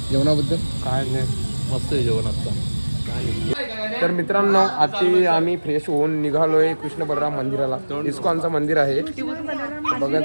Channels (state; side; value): inverted; both; correlation -1.00